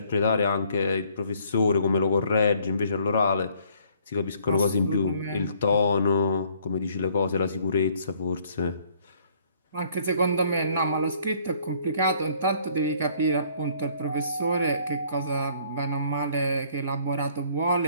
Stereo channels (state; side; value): inverted; both; correlation -0.62